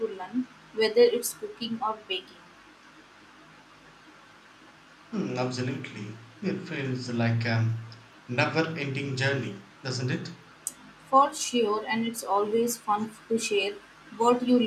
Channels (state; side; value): identical; both; correlation 1.00